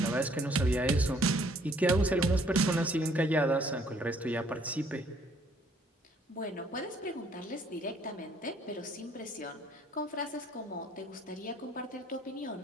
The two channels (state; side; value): normal; both; correlation 0.62